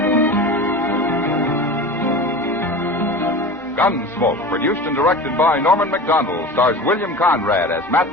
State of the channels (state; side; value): normal; both; correlation 0.33